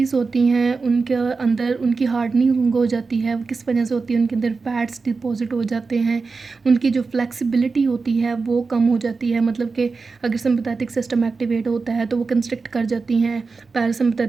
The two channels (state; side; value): quieter; left; 4.4 dB